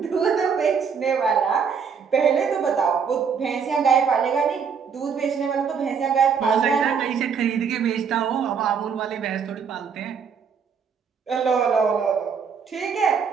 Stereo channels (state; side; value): quieter; left; 6.4 dB